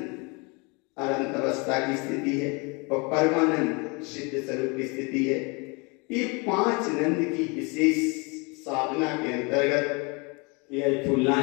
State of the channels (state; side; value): quieter; right; 30.0 dB